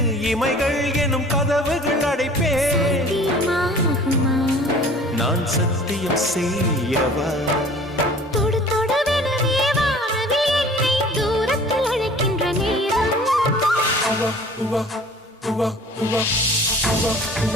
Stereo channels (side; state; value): both; normal; correlation 0.47